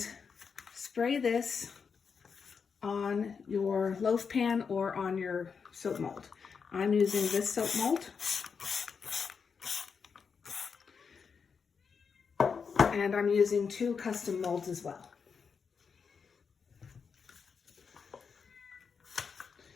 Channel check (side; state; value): right; quieter; 5.9 dB